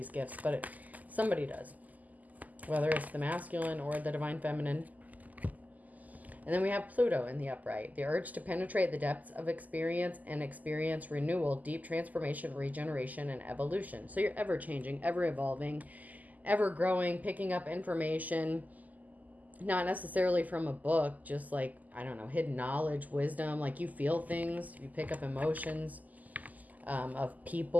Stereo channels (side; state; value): left; late; 0.079 ms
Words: gifts, but somebody does. Whether it's the masculine or the divine feminine. And then we have Pluto in the upright. The urge to penetrate the depths of experience and experience renewal, deep transformation, regeneration, and evolution. So you're ever changing, ever evolving, ever growing, picking up information, not necessarily from a book, just like, I don't know, hidden knowledge, wisdom. Like you feel things, you pick up emotions of